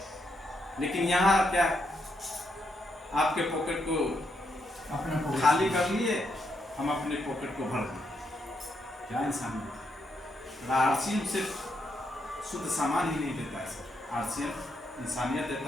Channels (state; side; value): normal; both; correlation 0.79